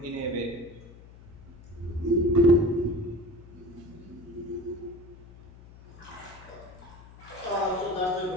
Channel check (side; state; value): left; noise; hum, 19 dB below the sound